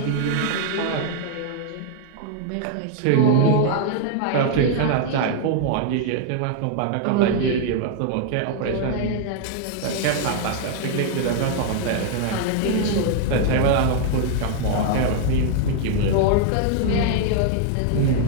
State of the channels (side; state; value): both; different; correlation 0.00